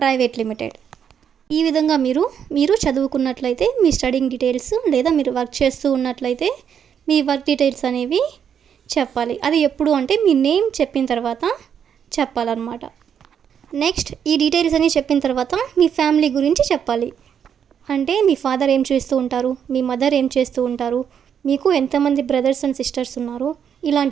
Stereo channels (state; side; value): quieter; left; 8.1 dB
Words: limited. ఈ విధంగా మీరు చదువుకున్నట్లయితే మీ స్టడింగ్ డీటెయిల్స్ లేదా మీరు వర్క్ చేస్తూ ఉన్నట్లయితే మీ వర్క్ డీటెయిల్స్ అనేవి చెప్పాలి. అది ఎప్పుడు అంటే మీ నేమ్ చెప్పిన తర్వాత చెప్పాలన్నమాట. నెక్స్ట్ ఈ డీటెయిల్స్ అన్నీ చెప్పిన తర్వాత మీ ఫ్యామిలీ గురించి చెప్పాలి. అంటే మీ ఫాదర్ ఏం చేస్తూ ఉంటారు, మీ మదర్ ఏం చేస్తూ ఉంటారు, మీకు ఎంతమంది బ్రదర్స్ అండ్ సిస్టర్స్ ఉన్నారు,